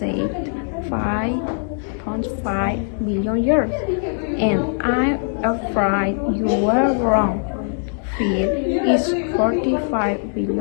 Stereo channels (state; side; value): silent; right; 57 dB below the other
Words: 5.5 billion years, and I'm afraid you were wrong. Phil is 45